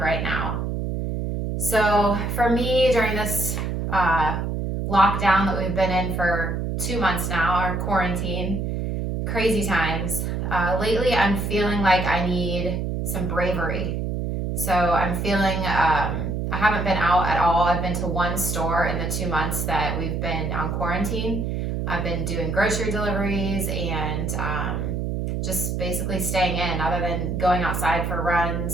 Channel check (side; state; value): right; noise; hum, 2 dB below the sound